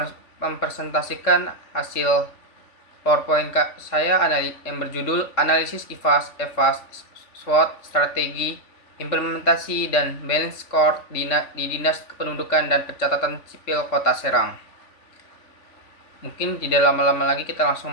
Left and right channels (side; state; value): right; late; 3.5 ms